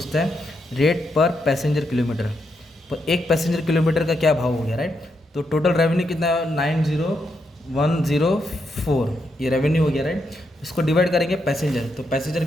है रेट पर पैसेंजर किलोमीटर, तो एक पैसेंजर किलोमीटर का क्या भाव हो गया, राइट। तो टोटल रेवेन्यू कितना है 90104, ये रेवेन्यू हो गया, राइट। इसको डिवाइड करेंगे पैसेंजर, तो पैसेंजर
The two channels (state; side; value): normal; both; correlation 0.81